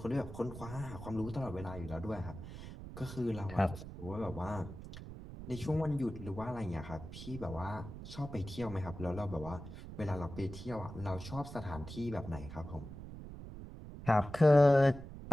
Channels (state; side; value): noise; right; rumble, 11 dB below the sound